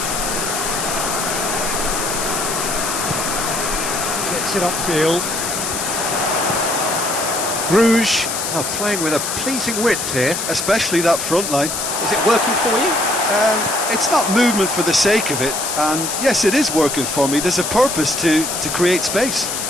Gets it upfield. Bruges are playing with a pleasing width here. Especially that front line. Is it working for you? It's not movement for the sake of it, and yes, it is working for me. There's a purpose to create space.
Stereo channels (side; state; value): left; noise; hiss, 3 dB below the sound